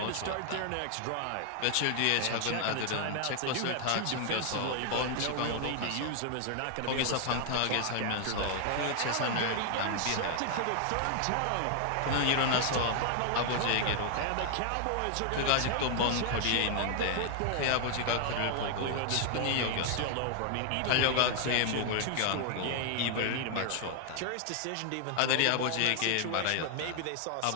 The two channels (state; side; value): different; both; correlation 0.00